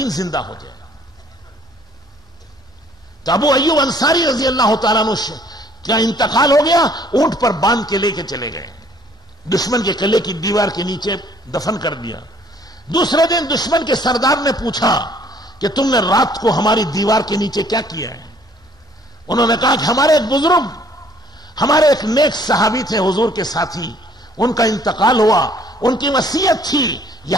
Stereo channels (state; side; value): normal; both; correlation 0.60